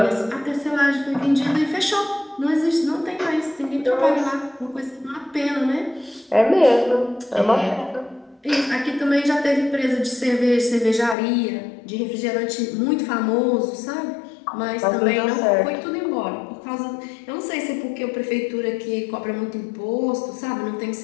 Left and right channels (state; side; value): drops out; right; at 11.2 s